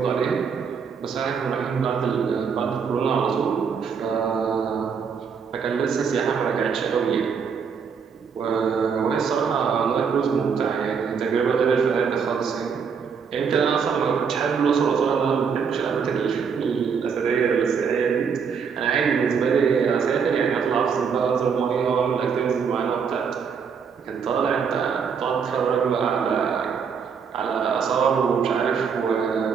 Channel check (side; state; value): left; quieter; 6.3 dB